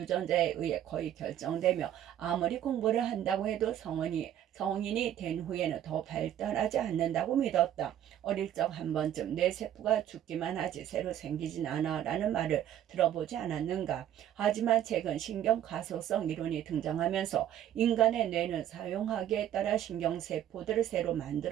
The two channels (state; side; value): quieter; left; 11.1 dB